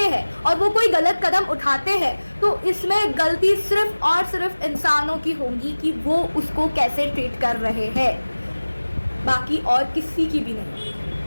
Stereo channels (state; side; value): inverted; both; correlation -1.00